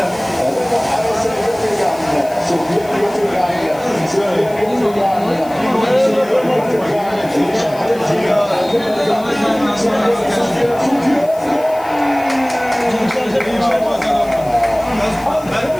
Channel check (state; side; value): noise; left; hiss, 22 dB below the sound